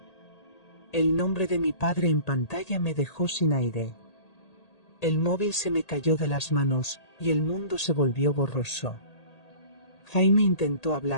El nombre de mi padre en pantalla me dejó sin aire. El móvil se me cayó de las manos, y el mundo se volvió borroso. Jaime intentó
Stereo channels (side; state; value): right; late; 1.8 ms